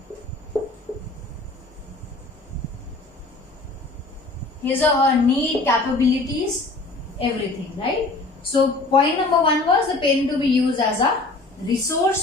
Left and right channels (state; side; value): quieter; right; 3.3 dB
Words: his or her need, capabilities, everything, right? So point number 1 was the parent to be used as a